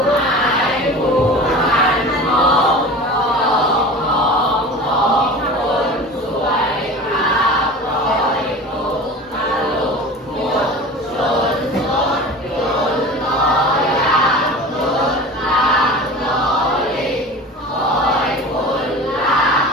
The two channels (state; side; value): normal; both; correlation 0.36